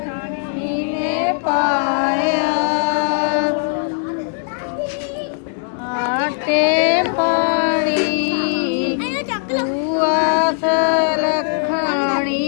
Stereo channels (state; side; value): silent; right; digital silence